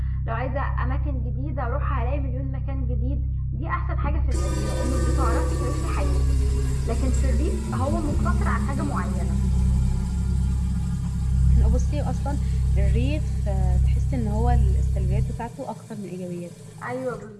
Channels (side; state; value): both; identical; correlation 1.00